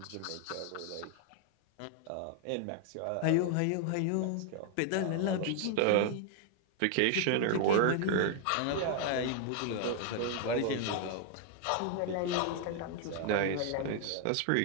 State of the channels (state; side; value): different; both; correlation 0.00